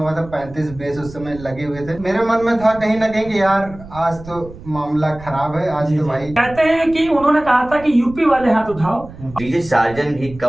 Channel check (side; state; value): right; noise; rumble, 17 dB below the sound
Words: था 35 बेस उस समय लगे हुए थे, मेरे मन में था कहीं ना कहीं कि यार आज तो मामला खराब है। आज तो भाई कहते हैं कि उन्होंने कहा था कि यूपी वाले हाथ उठाओ। डीजे सार्जन भी